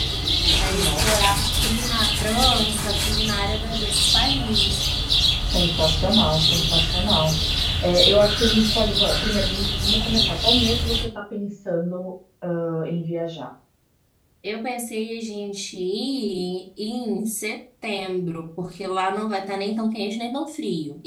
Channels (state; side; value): identical; both; correlation 1.00